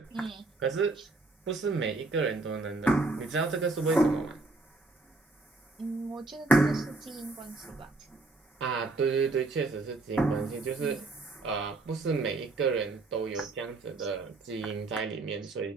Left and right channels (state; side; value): quieter; left; 3.4 dB